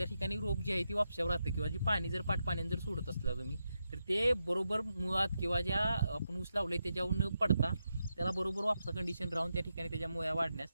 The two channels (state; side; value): inverted; both; correlation -0.86